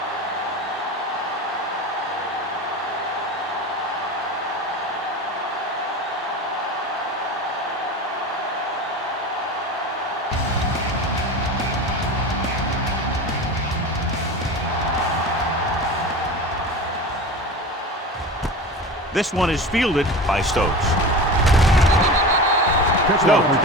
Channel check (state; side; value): normal; both; correlation 0.31